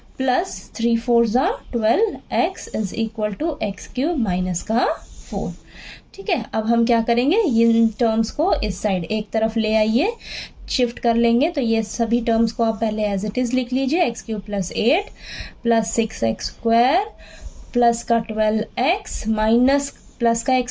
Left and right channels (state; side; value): identical; both; correlation 1.00